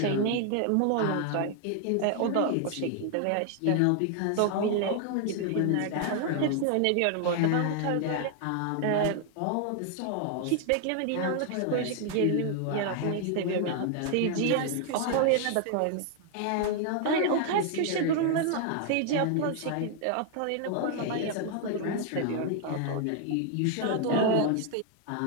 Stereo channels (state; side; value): different; both; correlation 0.00